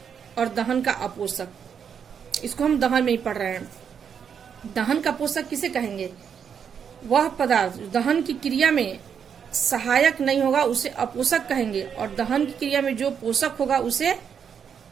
और दहन का अपोषक, इसको हम दहन में ही पढ़ रहे हैं। दहन का पोषक किसे कहेंगे, वह पदार्थ दहन की क्रिया में सहायक नहीं होगा उसे अपोषक कहेंगे, और दहन की क्रिया में जो पोषक होगा उसे,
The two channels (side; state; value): left; quieter; 7.4 dB